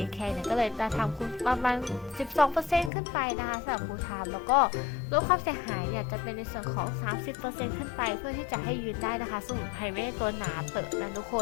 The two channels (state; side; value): drops out; right; at 2.9 s